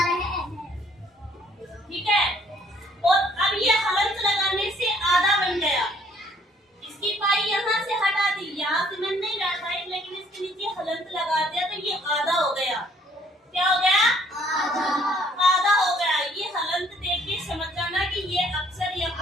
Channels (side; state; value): both; normal; correlation 0.62